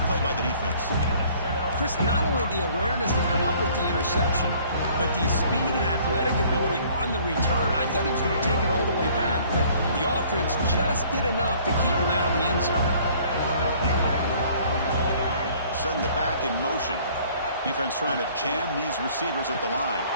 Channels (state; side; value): inverted; both; correlation -0.56